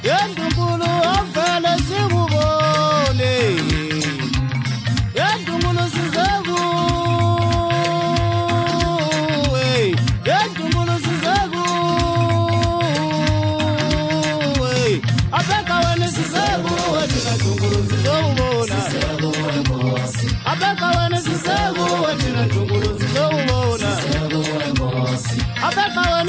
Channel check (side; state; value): both; identical; correlation 1.00